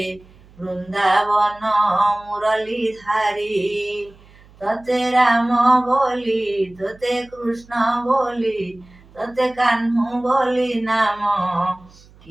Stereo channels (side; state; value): right; noise; hum, 26 dB below the sound